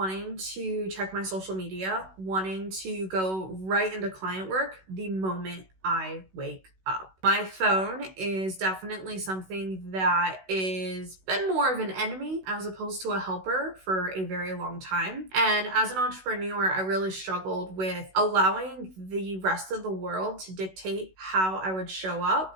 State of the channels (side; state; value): left; late; 16 ms